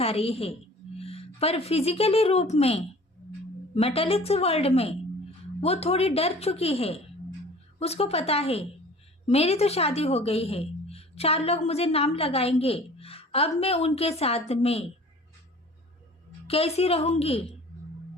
रही है, पर फिजिकली रूप में मेटालिक्स वर्ल्ड में वो थोड़ी डर चुकी है। उसको पता है मेरी तो शादी हो गई है, 4 लोग मुझे नाम लगाएंगे, अब मैं उनके साथ में कैसी रहूंगी,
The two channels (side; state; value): both; normal; correlation 0.46